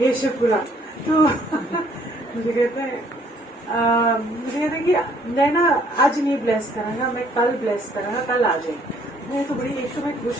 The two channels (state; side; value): normal; both; correlation 0.63